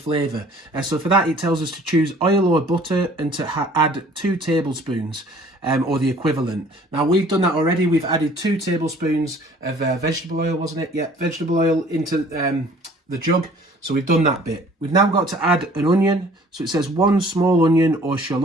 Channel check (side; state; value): both; normal; correlation 0.53